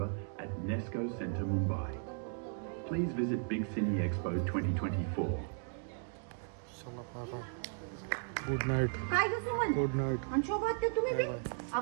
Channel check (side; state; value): left; silent; 54 dB below the other